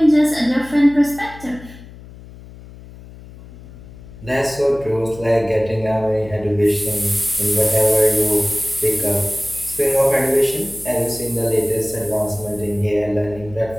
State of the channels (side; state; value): left; noise; hum, 18 dB below the sound